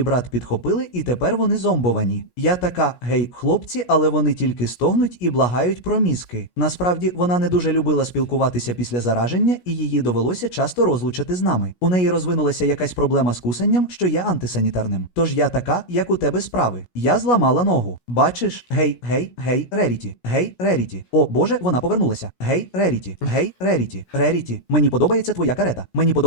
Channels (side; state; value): right; late; 17 ms